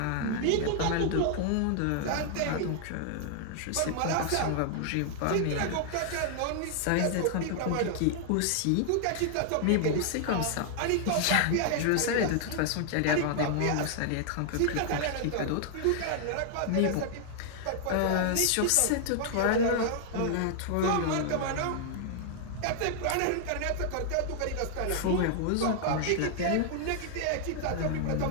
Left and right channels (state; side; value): different; both; correlation -0.01